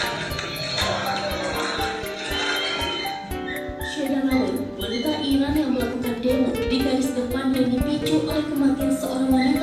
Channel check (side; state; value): both; identical; correlation 1.00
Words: Wanita Iran yang melakukan demo di garis depan yang dipicu oleh kematian seorang